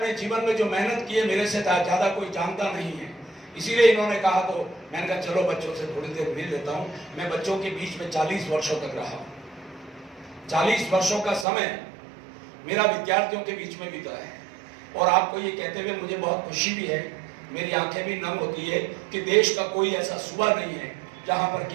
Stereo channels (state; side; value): drops out; left; at 11.5 s